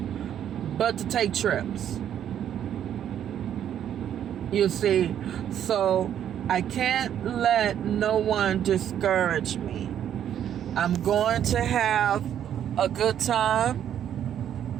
but to take trips. You see, so I can't let no one discourage me. I'm going to have a good time.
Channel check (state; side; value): quieter; left; 10.0 dB